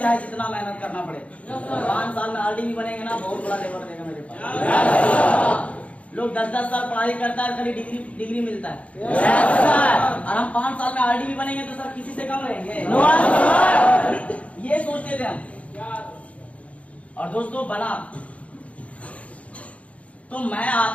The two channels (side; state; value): right; late; 0.065 ms